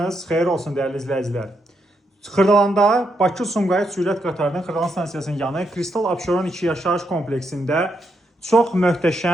xeyir olsun dəyərli izləyicilər. Xırdalanda Bakı-Sumqayıt sürət qatarının Xırdalan stansiyasının yanı Kristal Abşeron 2 yaşayış kompleksində çox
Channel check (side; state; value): both; normal; correlation 0.80